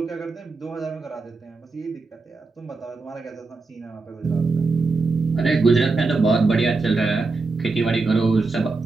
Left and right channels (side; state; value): left; quieter; 3.8 dB